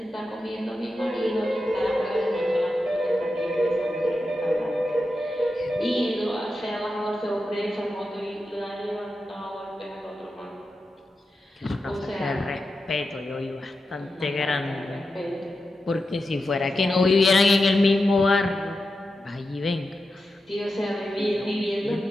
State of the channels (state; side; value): normal; both; correlation 0.90